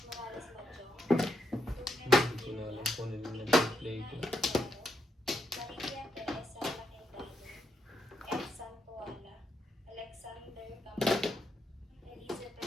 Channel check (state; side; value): normal; both; correlation 0.81